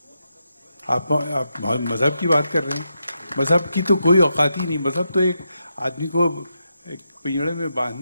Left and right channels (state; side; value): inverted; both; correlation -0.85